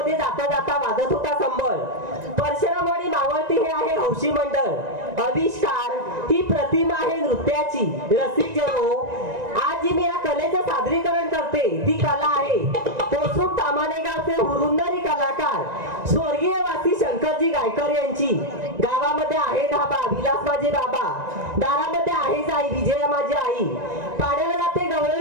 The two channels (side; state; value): left; late; 1.9 ms